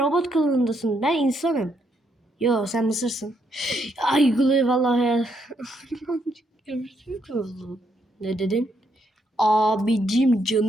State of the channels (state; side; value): normal; both; correlation 0.76